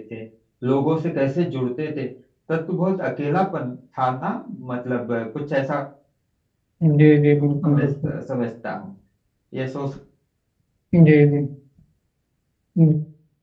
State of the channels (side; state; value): both; identical; correlation 1.00